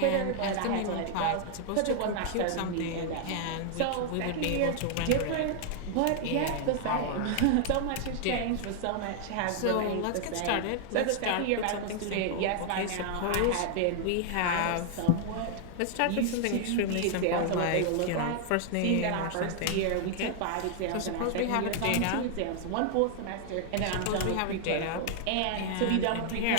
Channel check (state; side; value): different; both; correlation 0.00